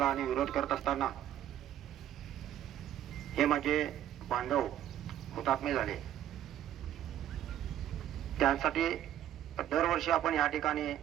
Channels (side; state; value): left; quieter; 11.5 dB